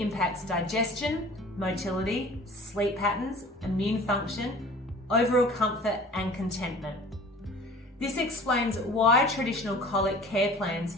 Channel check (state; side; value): normal; both; correlation 0.45